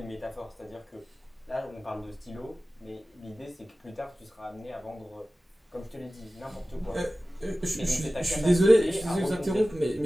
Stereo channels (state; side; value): normal; both; correlation 0.96